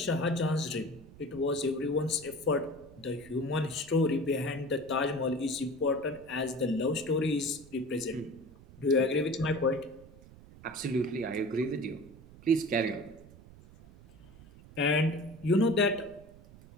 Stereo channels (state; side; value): noise; right; rumble, 21 dB below the sound